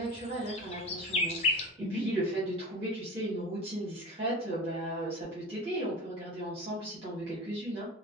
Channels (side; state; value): both; normal; correlation 0.34